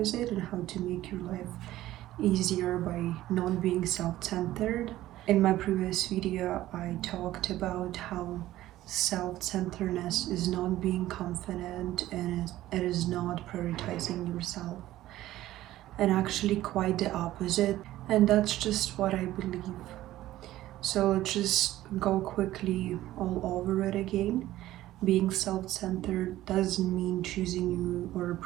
it and how to make your life easier by not being self-centered. In my previous video I talked about how self-centeredness is not being confident and it is not prioritizing yourself, and actually quite the opposite, and that's just what I believe. So let's just go quickly all over it again. Being self-centered doesn't mean choosing you or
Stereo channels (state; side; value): quieter; left; 14.9 dB